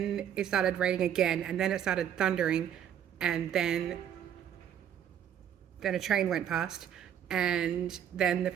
it started raining again, and then it started thundering, and then a train went past, and then the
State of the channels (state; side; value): quieter; left; 9.5 dB